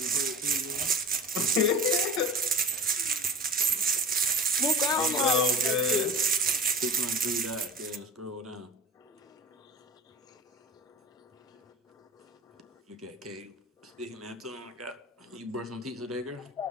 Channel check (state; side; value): normal; both; correlation 0.36